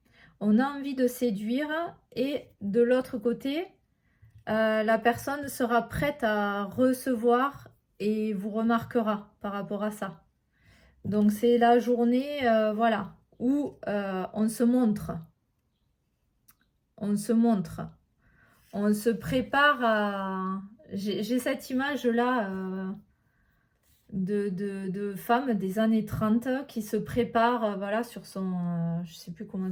On a envie de séduire et de l'autre côté, la personne sera prête à recevoir et vous remarquera par rapport à ça. Donc c'est la journée, voilà, où on se montre. On se montre. On se prépare à... J'ai cette image-là de femmes des années 30 qui se préparent, voilà, sur son... je sais plus comment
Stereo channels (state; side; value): identical; both; correlation 1.00